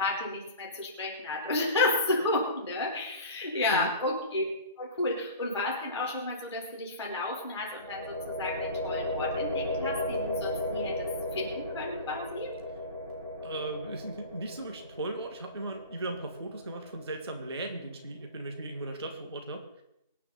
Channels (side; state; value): both; inverted; correlation -0.34